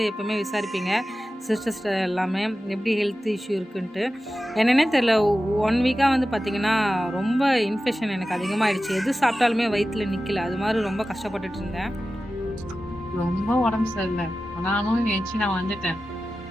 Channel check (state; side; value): normal; both; correlation 0.94